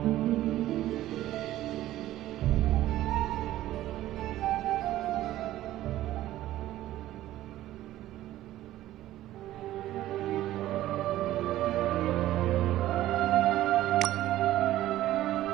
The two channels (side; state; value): left; quieter; 14.4 dB